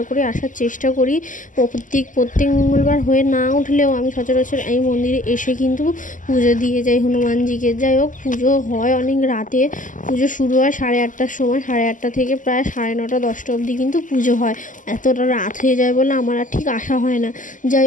করে আসার চেষ্টা করি। প্রত্যেক মঙ্গলবার হয়ে না উঠলেও আমি সচরাচর এই মন্দিরে এসে কিন্তু পুজো দিয়ে যাই হনুমানজিকে। যাই হোক, পুজো হয় অনেক রাতে। পুজো শুরু হয় 8:30টার সময়। 8:30 থেকে প্রায় 9:30 10টা অবধি কিন্তু পুজো হয়। এতটা রাত হয়ে যায় বলে আমার আর ঠিক আসা হয় না। যাই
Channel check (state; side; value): late; right; 0.38 ms